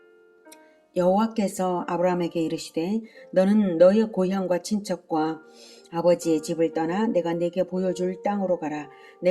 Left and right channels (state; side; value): identical; both; correlation 1.00